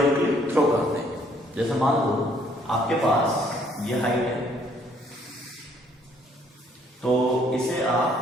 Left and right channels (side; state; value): both; normal; correlation 0.64